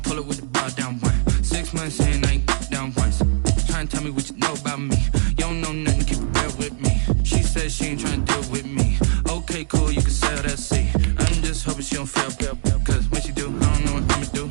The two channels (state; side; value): silent; left; digital silence